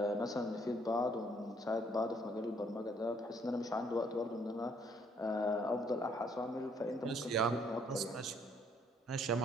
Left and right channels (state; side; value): normal; both; correlation 0.66